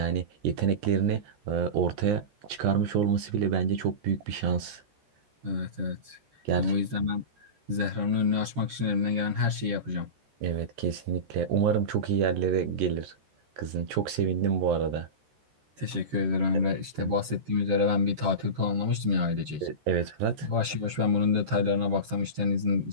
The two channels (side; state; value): left; late; 14 ms